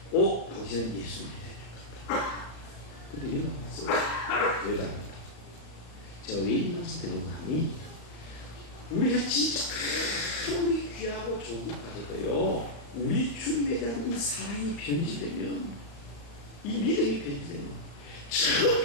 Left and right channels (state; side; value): late; right; 34 ms